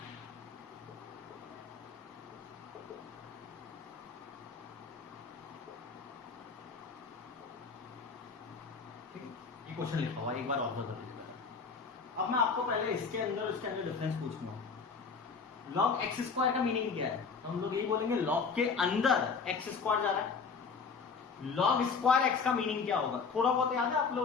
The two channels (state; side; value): quieter; right; 5.2 dB